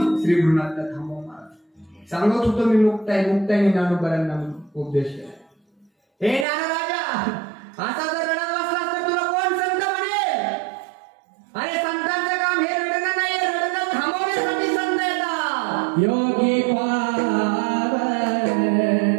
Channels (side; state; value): left; drops out; at 6.5 s